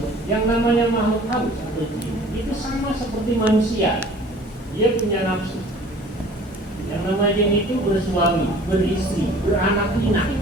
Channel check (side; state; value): both; normal; correlation 0.49